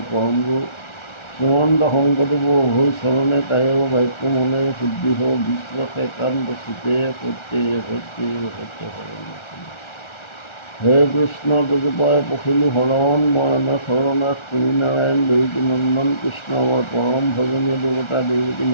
পৰম গুৰু শ্ৰীমন্ত শংকৰদেৱৰ হৈ চৰণে তায়ো বাক্য মনে শুদ্ধি হ বিশ্বাসে কান্ত চিতে সত্যে সত্যে সত্য শৰণ হে কৃষ্ণ তজুপাই পখিলো শৰণ ময়না শৰণাথ তুমি নাৰায়ণ দেৱকী নন্দন কৃষ্ণ আমাৰ পৰম ভজনীয় দেৱতা দেৱকী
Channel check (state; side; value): late; right; 1.4 ms